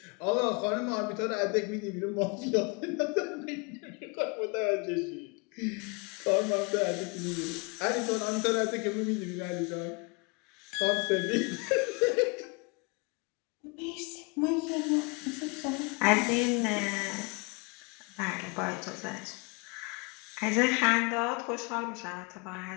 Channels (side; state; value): right; quieter; 31.3 dB